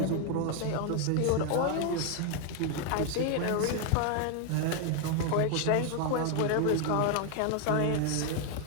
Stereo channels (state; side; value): different; both; correlation 0.00